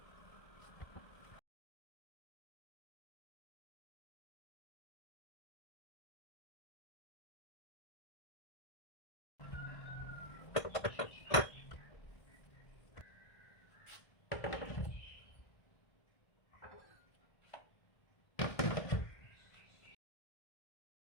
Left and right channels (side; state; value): right; late; 1.5 ms